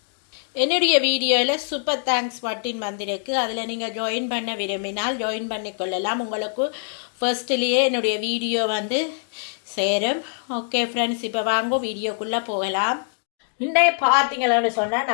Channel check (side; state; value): right; silent; digital silence